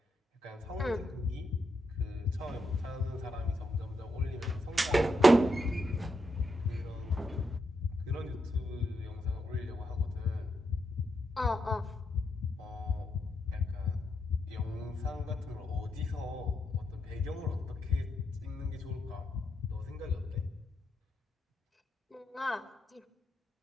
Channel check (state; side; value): normal; both; correlation 0.82